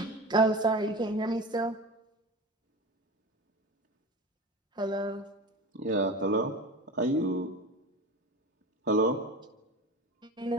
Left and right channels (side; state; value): both; normal; correlation 0.31